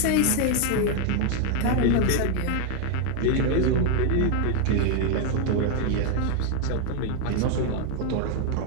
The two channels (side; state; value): both; different; correlation 0.01